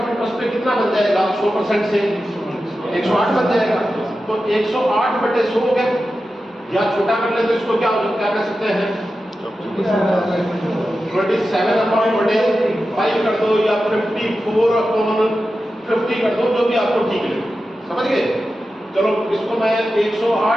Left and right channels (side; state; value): both; normal; correlation 0.92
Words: इंटरेस्ट पे कितना बन जाएगा? 100% से 108 बन जाएगा। तो 108 बटे 100 हो गया, या छोटा कर ले तो इसको क्या कर सकते हैं? 27 अपॉन बटे 5 कर दो, या 54 अपॉन 50 कर दो, जो भी आपको ठीक लगे। समझ गए? चलो इसको मैं